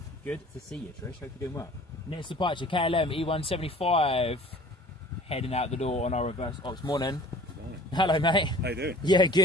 Good to see you, Trish. Hope you're doing well. Next departure, KLM E175. Heading out the door on our reverse ops morning. Hello, mate. How you doing? Yeah,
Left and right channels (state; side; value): normal; both; correlation 0.48